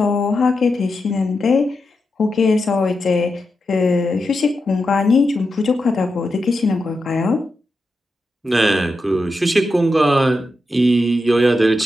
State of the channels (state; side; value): normal; both; correlation 0.88